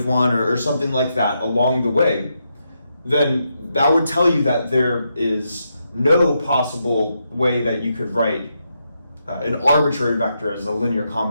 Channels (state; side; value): inverted; both; correlation -0.82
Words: 1, or something like that along the way, then that would tell you that there is no possible way that you could write an arbitrary vector as a linear